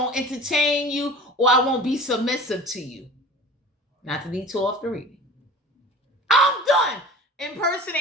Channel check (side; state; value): both; normal; correlation 0.40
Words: entertain you, or I won't be submissive to you. Not to detour off the reading. I'm done.